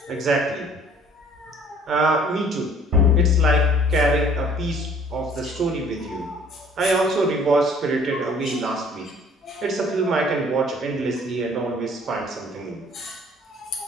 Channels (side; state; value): both; normal; correlation 0.55